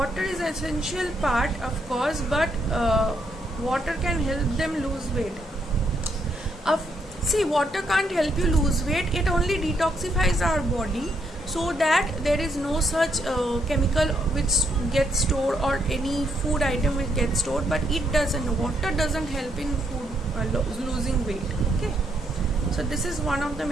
is essential part, of course, but water can help them lose weight. See, water can't help you lose weight. It only detoxifies our body, so that there is no such chemical which gets stored or any food item which gets stored, but it doesn't. Water doesn't help in food losing weight. Okay, so this is one of the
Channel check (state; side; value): normal; both; correlation 0.75